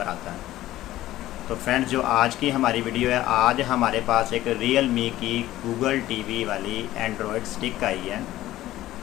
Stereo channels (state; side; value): quieter; right; 15.0 dB